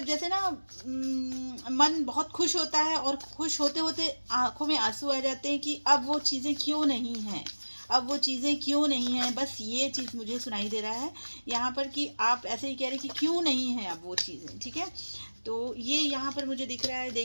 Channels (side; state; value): both; inverted; correlation -1.00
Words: जैसे ना मन बहुत खुश होता है और खुश होते होते आंखों में आंसू आ जाते हैं कि अब वो चीज़ें क्यों नहीं हैं, अब वो चीज़ें क्यों नहीं हैं। बस ये चीज़ मुझे सुनाई दे रहा है यहाँ पर कि आप ऐसे ही कह रहे हैं कि क्यों नहीं है अब वो चीज़ें। ठीक है, तो ये यहाँ पर मुझे दिख रहा है।